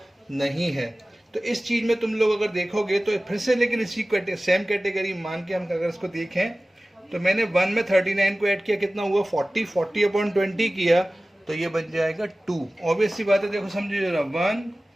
नहीं है। तो इस चीज में तुम लोग अगर देखोगे तो फिर से, लेकिन इसी सेम कैटेगरी मान के हम अगर इसको देखें तो मैंने 1 में 39 को ऐड किया, कितना हुआ 40 अपॉन 20 किया, तो ये बन जाएगा 2। ऑब्वियस सी बात है, देखो समझिए जरा, 1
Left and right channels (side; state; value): both; normal; correlation 0.97